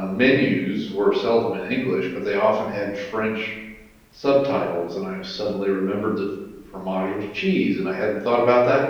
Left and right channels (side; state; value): both; identical; correlation 1.00